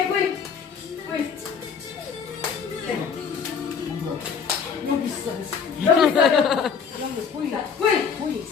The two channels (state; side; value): quieter; right; 6.4 dB